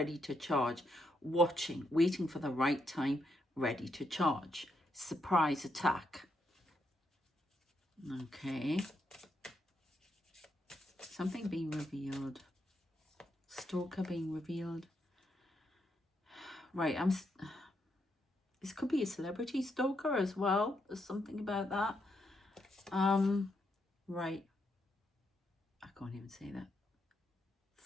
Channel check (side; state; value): both; normal; correlation 0.79